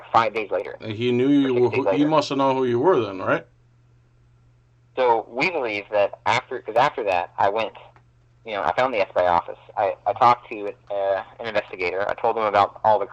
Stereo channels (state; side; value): identical; both; correlation 1.00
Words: 5 days later. He knew you were. He must have known who you were then, right? So we believe that after that, I went, I found the FBI office. I talked to an investigator. I told him about all the